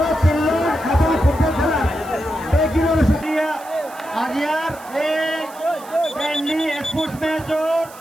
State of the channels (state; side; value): noise; right; hiss, 20 dB below the sound